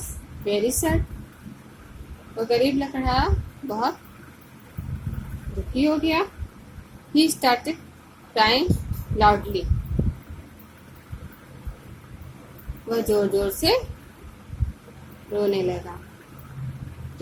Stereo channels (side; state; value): both; identical; correlation 1.00